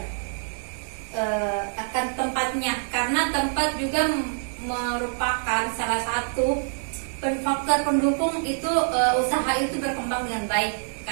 Akan tempatnya, karena tempat juga merupakan salah satu faktor pendukung itu usaha itu berkembang dengan baik.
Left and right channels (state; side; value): silent; left; digital silence